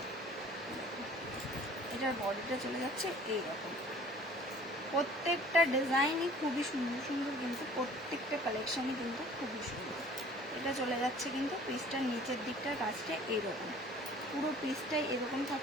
এটার বডিটা চলে যাচ্ছে এইরকম। প্রত্যেকটা ডিজাইনই খুবই সুন্দর সুন্দর, কিন্তু প্রত্যেকটা কালেকশনই কিন্তু খুবই সুন্দর। এটা চলে যাচ্ছে কিন্তু পিসটার নিচের দিকটার কাজটা এইরকম, পুরো পিসটাই এরকম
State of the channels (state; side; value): normal; both; correlation 0.50